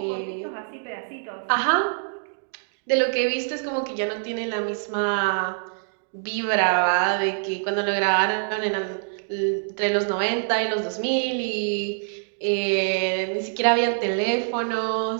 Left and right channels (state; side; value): silent; left; digital silence